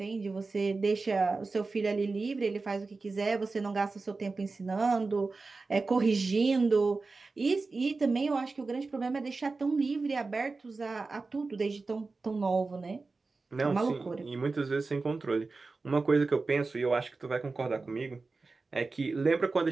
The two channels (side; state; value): left; quieter; 3.9 dB